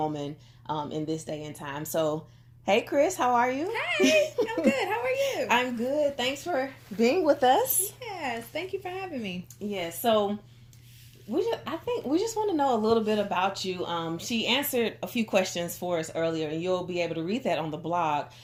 in this day and time. So, hey, Chris, how are you? Hey, I'm good. How are you? I'm good. Thanks for being with us. Yes, thank you for having me. Yes. So I think we just want to know a little bit about you. She answered a few questions for us earlier, and you'll be able to read that on the blog.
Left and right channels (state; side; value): identical; both; correlation 1.00